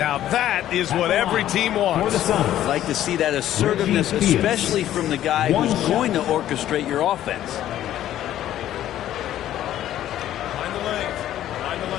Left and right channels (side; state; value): right; quieter; 12.4 dB